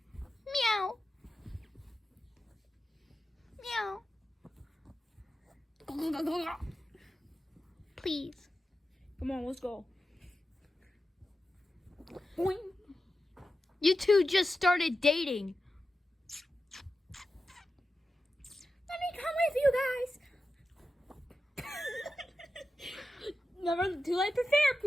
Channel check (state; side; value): normal; both; correlation 0.91